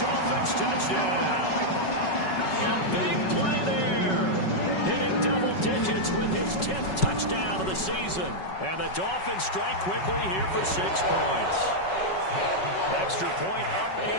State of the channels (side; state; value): right; late; 5.3 ms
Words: touchdown. A big play there. Hitting double digits with his 10th touchdown of the season. And the Dolphins strike quickly here for 6 points. Extra point up